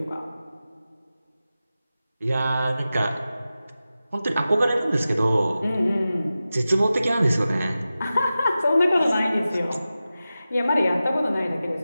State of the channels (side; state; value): both; inverted; correlation -0.94